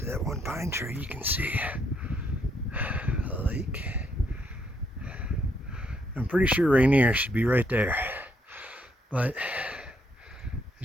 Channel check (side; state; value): both; normal; correlation 0.74